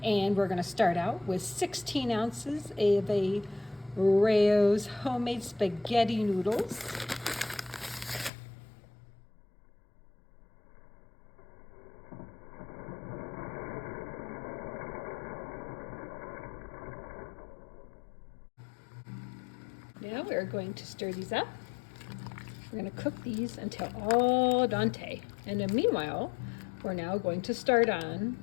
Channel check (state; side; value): drops out; right; at 8.3 s